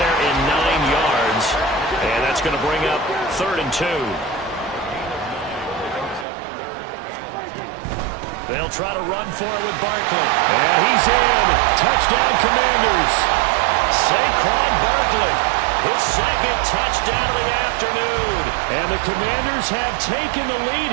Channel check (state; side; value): drops out; left; at 6.2 s